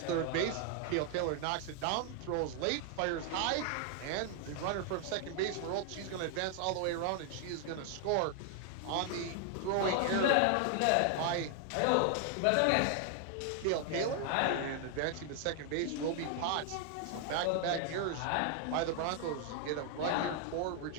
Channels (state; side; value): different; both; correlation 0.00